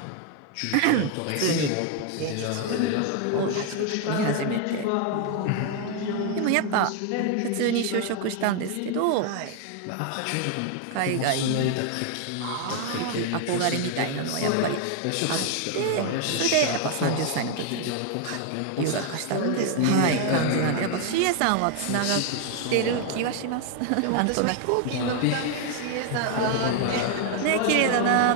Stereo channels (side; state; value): both; different; correlation 0.00